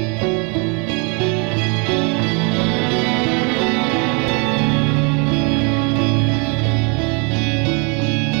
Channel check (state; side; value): quieter; left; 34.5 dB